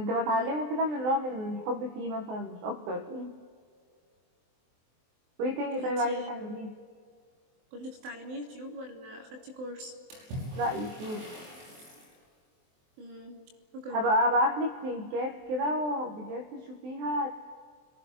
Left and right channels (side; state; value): left; late; 23 ms